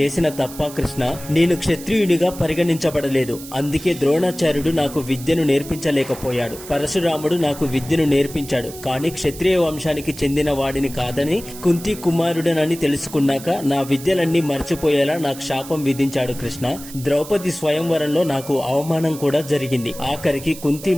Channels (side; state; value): right; noise; hiss, 15 dB below the sound